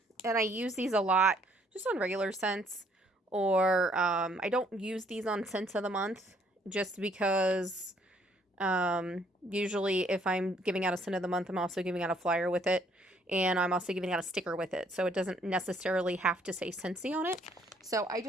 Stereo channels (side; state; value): both; normal; correlation 0.65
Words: and I use these a lot just on regular scents, or I don't use these on scents of the month just because usually if I'm giving out a scent of the month, I'm also giving out a flyer with it, and I'm also giving out a sticker with it, so it doesn't necessarily have to say Scentsy on it. So I